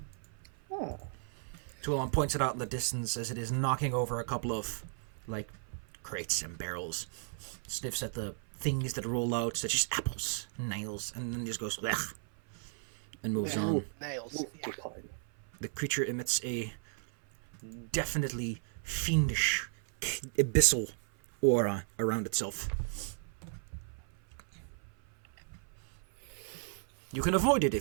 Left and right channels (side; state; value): left; silent; 54 dB below the other